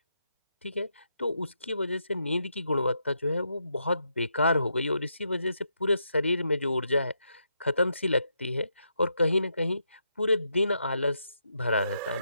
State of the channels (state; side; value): inverted; both; correlation -0.81